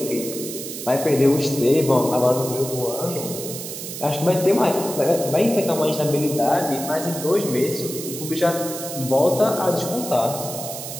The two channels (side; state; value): right; noise; hiss, 8 dB below the sound